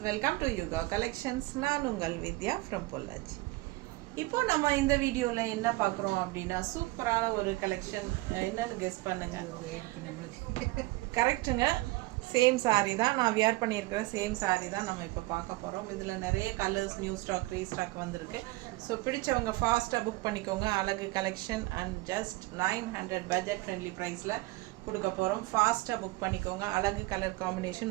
welcome to Yuga Collections. நான் உங்கள் வித்யா from Pollachi. இப்போ நம்ம இந்த வீடியோல என்ன பார்க்குறோம் அப்படின்னா சூப்பரான ஒரு கலெக்ஷன். என்னன்னு கெஸ் பண்ணுங்க. கரெக்ட்டுங்க. சேம் சாரீ தான் நான் வியர் பண்ணியிருக்கிற சேம் சாரீ தான் நம்ம இப்போ பார்க்க போகிறோம். இதில் நிறைய கலர்ஸ் நியூ ஸ்டாக் ரீஸ்டாக் வந்திருக்கு. ஸோ பிடிச்சவங்க ஃபாஸ்ட்டாக புக் பண்ணிக்கோங்க. அழகு collection and just 900 budget friendly ப்ரைஸில் கொடுக்க போகிறோம். ஃபாஸ்ட்டாக புக் பண்ணிக்கோங்க. அழகு கலர்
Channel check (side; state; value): left; quieter; 21.4 dB